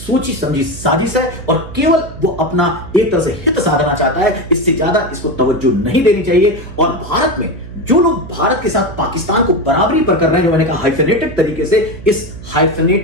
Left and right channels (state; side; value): noise; right; hum, 14 dB below the sound